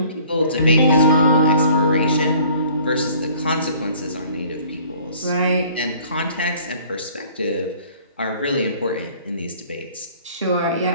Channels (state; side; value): inverted; both; correlation -0.53